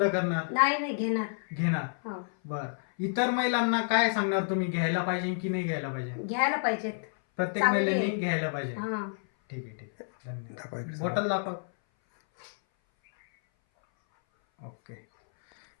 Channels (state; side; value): silent; right; 57 dB below the other